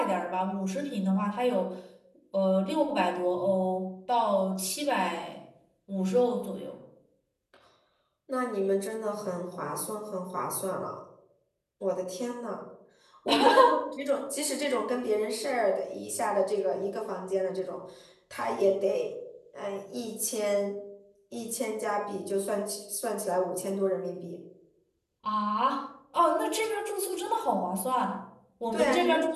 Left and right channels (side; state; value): both; identical; correlation 1.00